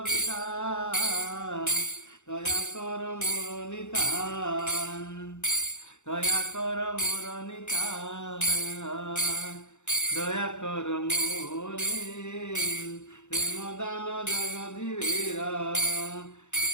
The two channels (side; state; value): right; late; 0.84 ms